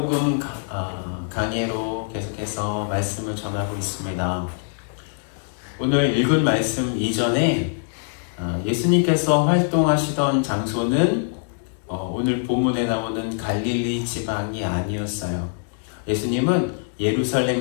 강해로 계속해서 말씀을 전하고 있습니다. 오늘 읽은 말씀 이전에 예수님께서 활동하시던 장소는 오늘 본문에 나오는 갈릴리 지방이 아니었어요. 예수님은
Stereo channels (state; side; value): silent; right; digital silence